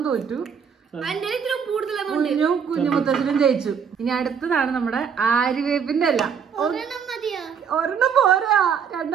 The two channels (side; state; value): left; quieter; 6.9 dB